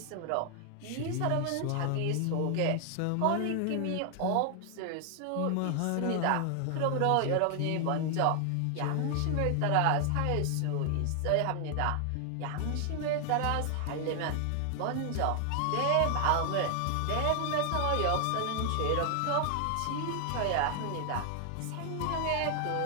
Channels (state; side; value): different; both; correlation 0.00